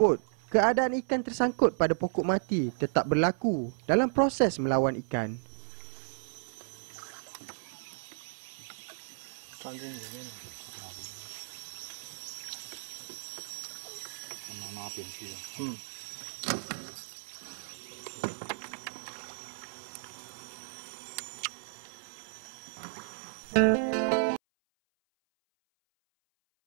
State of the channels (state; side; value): silent; left; 56 dB below the other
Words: keadaan ikan tersangkut pada pokok mati tetap berlaku dalam proses melawan ikan. 钻进里面了，拿边去了。